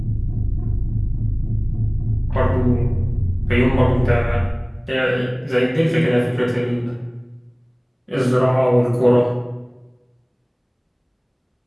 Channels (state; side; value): identical; both; correlation 1.00